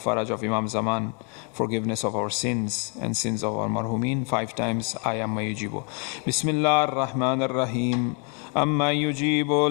of Imam Zaman, forgiveness of our sins and sins of our marhumin. 5 times Ayamma yujibu. Bismillah ar-Rahman ar-Rahim. Amma yujibu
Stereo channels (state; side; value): quieter; right; 35.2 dB